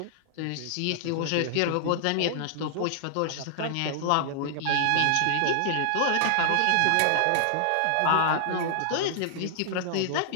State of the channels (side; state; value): both; different; correlation -0.01